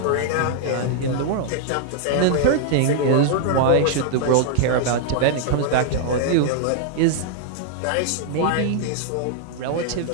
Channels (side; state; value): both; different; correlation -0.01